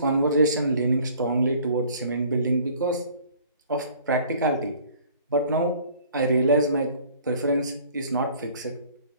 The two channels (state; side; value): inverted; both; correlation -0.53